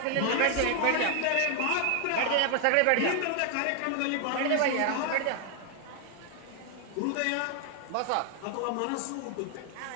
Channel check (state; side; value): different; both; correlation 0.00